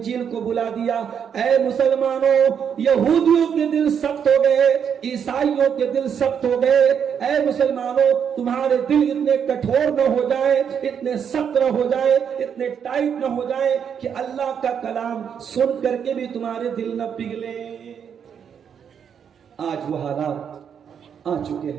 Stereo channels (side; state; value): left; quieter; 7.7 dB